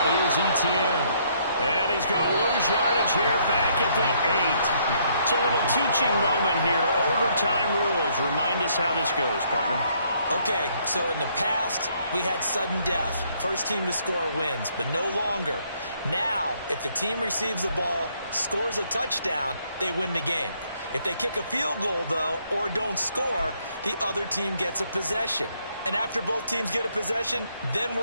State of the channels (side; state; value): both; inverted; correlation -0.68